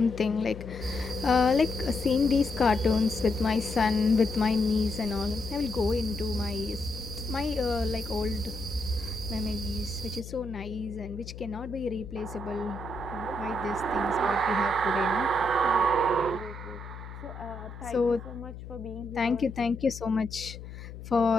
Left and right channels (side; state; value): left; noise; hum, 12 dB below the sound